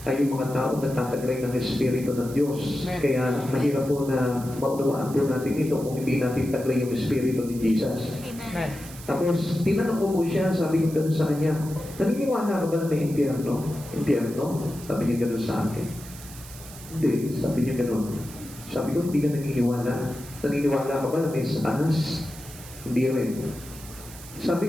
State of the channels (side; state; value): right; noise; hiss, 16 dB below the sound